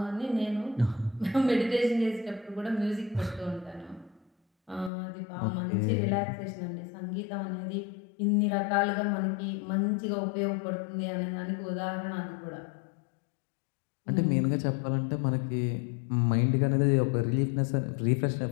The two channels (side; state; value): right; drops out; at 4.9 s